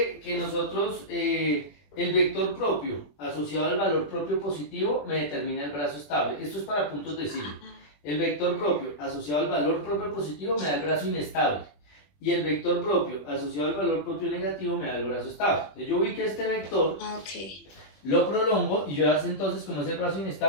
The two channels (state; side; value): late; right; 21 ms